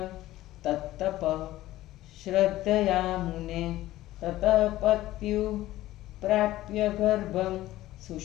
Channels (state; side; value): quieter; right; 15.6 dB